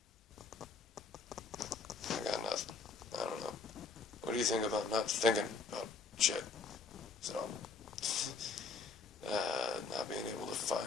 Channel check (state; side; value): quieter; right; 4.3 dB